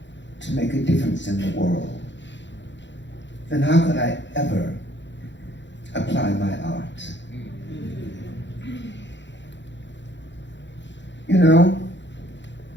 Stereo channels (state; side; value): late; right; 0.53 ms